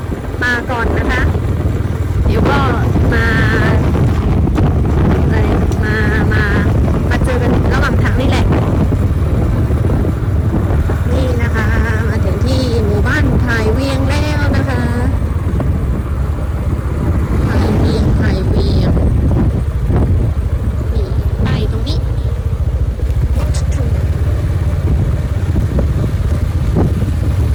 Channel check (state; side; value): identical; both; correlation 1.00